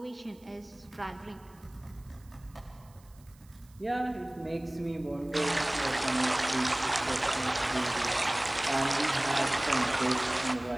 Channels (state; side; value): noise; right; hiss, 29 dB below the sound